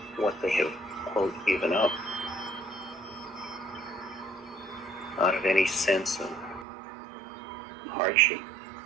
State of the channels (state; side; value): drops out; left; at 6.7 s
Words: what they have, quote, given up, out of any sense of hardship.